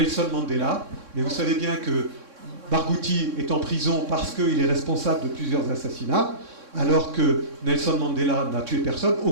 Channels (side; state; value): left; late; 3.6 ms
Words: Mandela. Mais vous savez bien que Barghouti est en prison parce qu'il est responsable de plusieurs assassinats, alors que Nelson Mandela n'a tué personne. Au